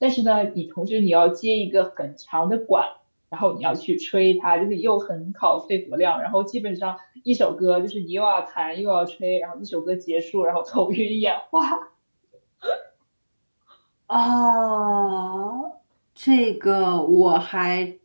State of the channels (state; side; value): inverted; both; correlation -1.00